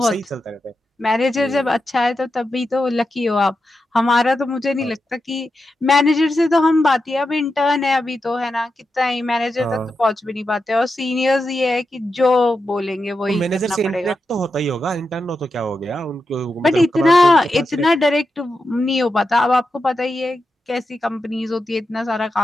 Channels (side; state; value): both; normal; correlation 0.88